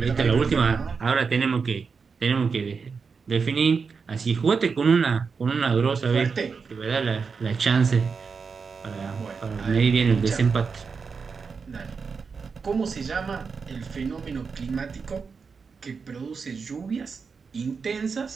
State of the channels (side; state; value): left; quieter; 5.3 dB